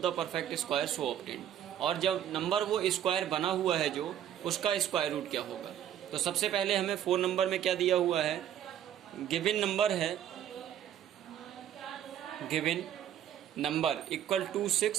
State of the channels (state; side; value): quieter; left; 10.5 dB